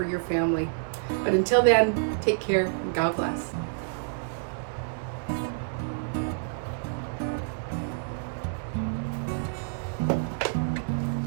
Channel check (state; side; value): silent; left; 59 dB below the other